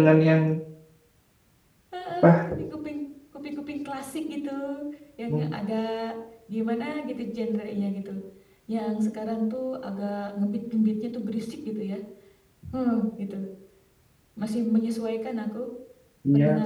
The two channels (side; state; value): both; identical; correlation 1.00